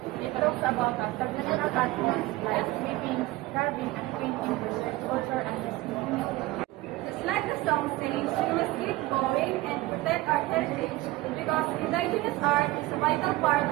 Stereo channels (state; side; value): quieter; left; 18.9 dB